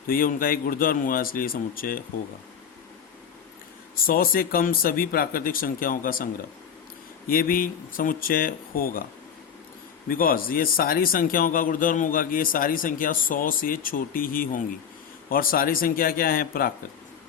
तो ये उनका एक गुणधर्म हुआ, इसलिए समुच्चय होगा। 100 से कम सभी प्राकृतिक संख्याओं का संग्रह, ये भी समुच्चय होगा, बिकॉज ये सारी संख्याओं का गुणधर्म होगा कि ये सारी संख्या 100 से छोटी ही होंगी, और सारी संख्या क्या है, प्राकृत,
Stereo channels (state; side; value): quieter; right; 7.7 dB